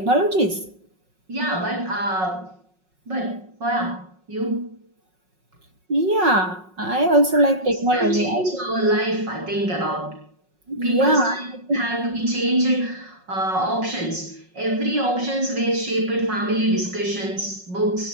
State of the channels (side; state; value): left; late; 5.4 ms